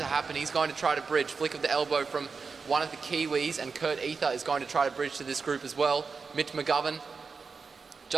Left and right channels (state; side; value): quieter; left; 5.0 dB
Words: happen. He's going to try to bridge. Flick of the elbow from one of the Kiwis, and Kurt Ether is going to try to bridge to this group as well. Mitch McGovern